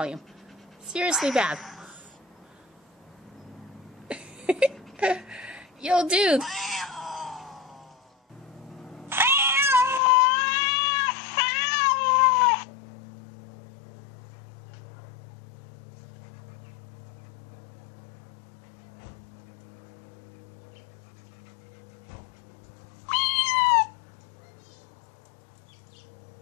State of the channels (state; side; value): drops out; right; at 10.0 s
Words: Seriously bad. Yo, dude.